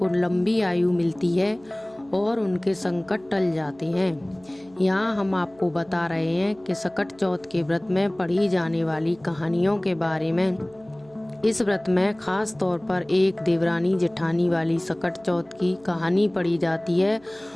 लंबी आयु मिलती है और उनके संकट टल जाते हैं। यहाँ हम आपको बता रहे हैं कि सकट चौथ के व्रत में पढ़ी जाने वाली कहानियों के बारे में। इस व्रत में खास तौर पर एक देवरानी जेठानी वाली सकट चौथ की कहानी पढ़ी जाती है,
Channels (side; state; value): right; noise; hum, 28 dB below the sound